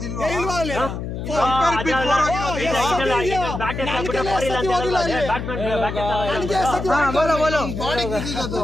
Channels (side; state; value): left; noise; hum, 6 dB below the sound